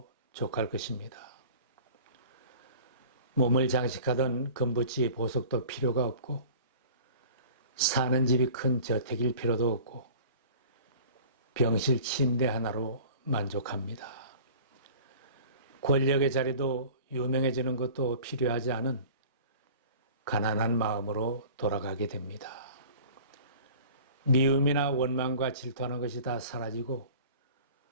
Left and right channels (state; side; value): inverted; both; correlation -0.44